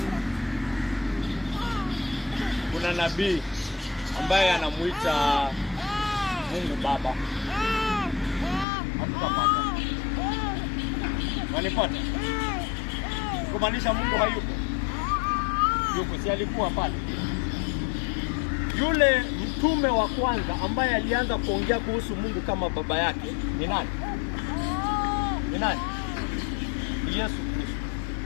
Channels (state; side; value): drops out; right; at 8.7 s